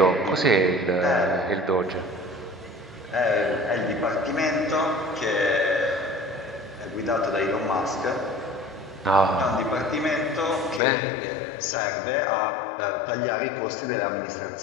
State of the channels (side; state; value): right; drops out; at 10.8 s